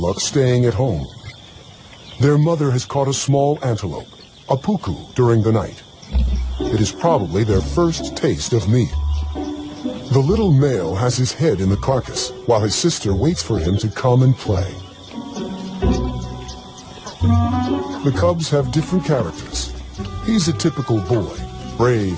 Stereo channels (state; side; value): identical; both; correlation 1.00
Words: staying at home. Their mother has caught a small antelope, a puku, during the night. It is probably their first taste of meat. The little male has his head in the carcass, while his sister waits for him to come and play. The cubs have different characters. He's a typical boy,